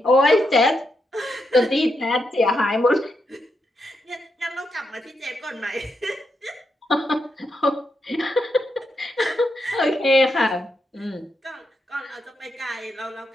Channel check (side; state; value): both; normal; correlation 0.83